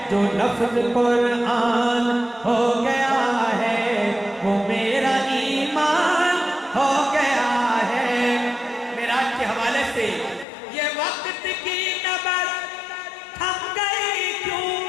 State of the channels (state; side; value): drops out; right; at 10.5 s